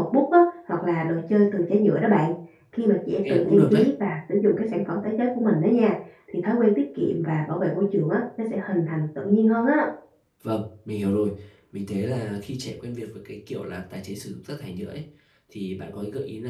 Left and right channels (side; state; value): both; identical; correlation 1.00